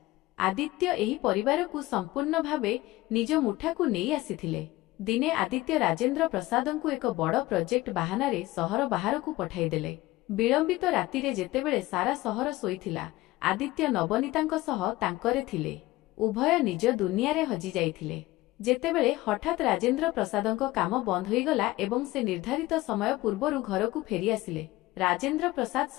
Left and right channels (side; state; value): right; quieter; 18.5 dB